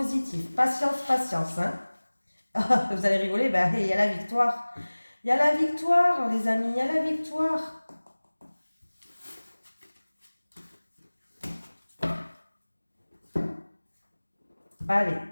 Patience, patience, hein. Vous allez rigoler, ben, il y a la victoire. Il y a la victoire, les amis, il y a la victoire. Allez,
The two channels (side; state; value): both; inverted; correlation -1.00